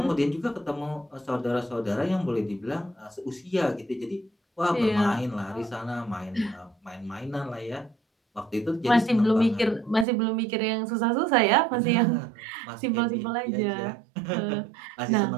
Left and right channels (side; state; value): left; drops out; at 10.1 s